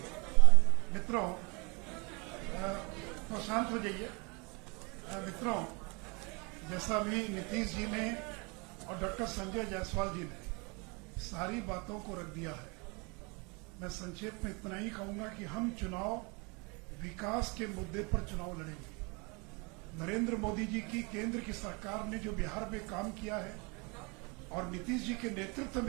मित्रों, तो शांत हो जाइए। मित्रों, जैसा भी नीतीश जी ने और डॉक्टर संजय जायसवाल जी ने सारी बातों को रख दिया है, मैं संक्षेप में इतना ही कहूंगा कि हम चुनाव विकास के मुद्दे पर चुनाव लड़ेंगे। नरेंद्र मोदी जी की केंद्र की सरकार ने जो बिहार में काम किया है और नीतीश जी के नेतृत्व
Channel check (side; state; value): left; quieter; 30.2 dB